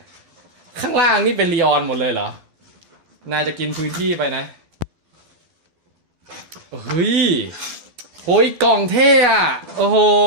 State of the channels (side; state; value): left; late; 12 ms